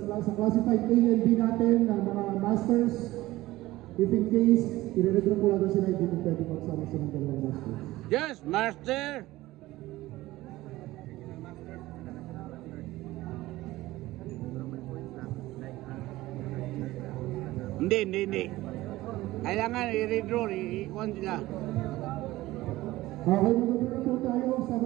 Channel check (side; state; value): left; quieter; 17.6 dB